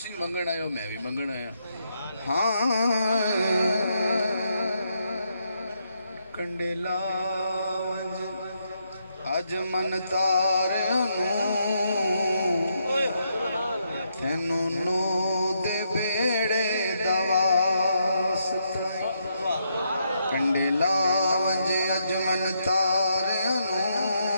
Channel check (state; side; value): inverted; both; correlation -0.78